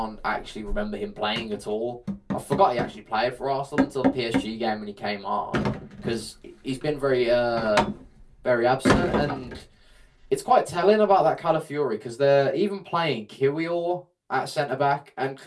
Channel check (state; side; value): identical; both; correlation 1.00